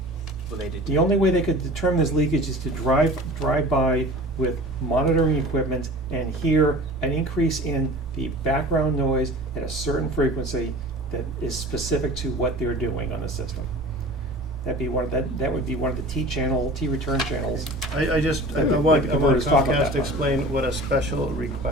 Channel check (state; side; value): normal; both; correlation 0.40